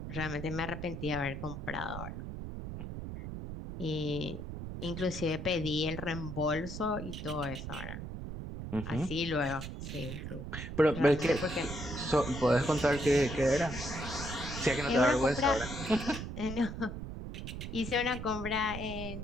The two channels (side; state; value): right; noise; rumble, 7 dB below the sound